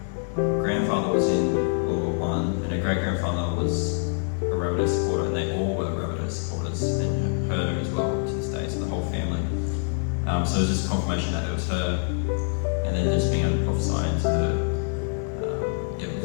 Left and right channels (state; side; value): silent; right; 61 dB below the other